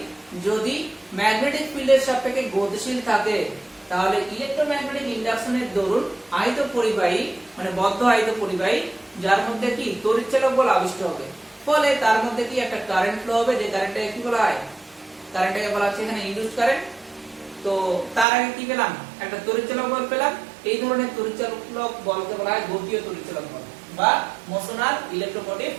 যদি ম্যাগনেটিক ফিল্ডের সাপেক্ষে গতিশীল থাকে তাহলে ইলেকট্রোম্যাগনেটিক ইন্ডাকশনের দরুন আয়ত পরিবাহী মানে বদ্ধ আয়ত পরিবাহী যার মধ্যে কি তড়িৎচালক বল আবিষ্ট হবে, ফলে তার মধ্যে কি একটা কারেন্ট ফ্লো হবে, যে কারেন্টটাকে কি বলা হয়, কারেন্টটাকে বলা হচ্ছে এখানে ইনডিউসড কারেন্ট। তো তার আগে কি পেলাম একটা তড়িৎচালক বল পেলাম, এই ধরনের তড়িৎচালক বলকে বলা হয় গতীয় তড়িৎচালক বল বা মোশনাল ইলেকট্রোমোটিভ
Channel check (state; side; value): drops out; left; at 18.2 s